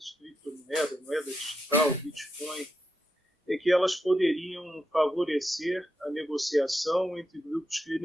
moeda digital, Bitcoin, é que elas poderiam favorecer a negociação entre grupos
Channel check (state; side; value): normal; both; correlation 0.86